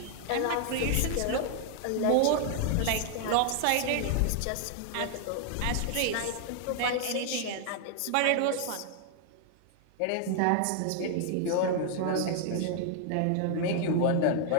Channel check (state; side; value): different; both; correlation 0.00